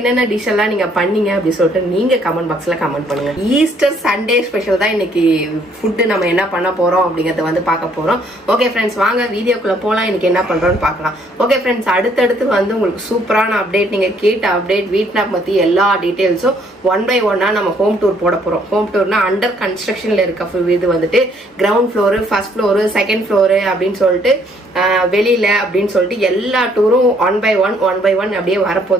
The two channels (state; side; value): normal; both; correlation 0.65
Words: டிஷ் எல்லாம் நீங்க பண்ணீங்க அப்படி சொல்லிட்டு நீங்க கமெண்ட் பாக்ஸ்ல கமெண்ட் பண்ணுங்க. ஈஸ்டர் சண்டே ஸ்பெஷல் தான் இன்னைக்கு ஃபுட் நம்ம என்ன பண்ண போறோம் அப்படிங்கறத வந்து பார்க்க போறோம். ஓகே ஃப்ரெண்ட்ஸ், வாங்க வீடியோக்குள்ள போலாம். இன்னைக்கு என்ன பண்றோம்னு பார்க்கலாம். ஓகே ஃப்ரெண்ட்ஸ், அடுத்து வந்து உங்களுக்கு சூப்பரான அப்டேட், நீங்க கேட்ட அப்டேட், வீட்னாப் பத்தி எல்லா டீடைல்ஸும் ஒன் பை ஒன்னா நம்ம ஹோம் டூர் போட போறோம். ஹோம் டூர்னா அண்டர் கன்ஸ்ட்ரக்ஷன்ல இருக்க இது வந்துட்டு ground floor, first floor, second floor அப்படின்னு சொல்லிட்டு வெளியில அப்படின்னு சொல்லிட்டு எல்லா டூரும் ஒன் பை ஒன் அப்படியே